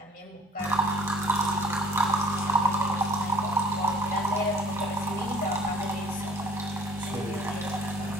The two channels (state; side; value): normal; both; correlation 0.53